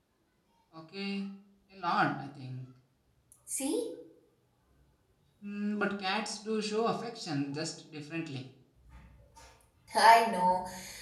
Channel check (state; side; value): identical; both; correlation 1.00